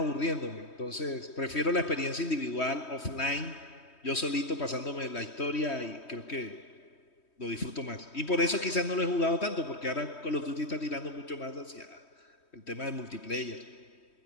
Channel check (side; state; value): right; late; 3.2 ms